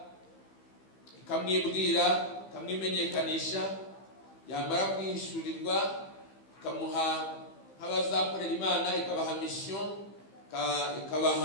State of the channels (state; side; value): late; right; 15 ms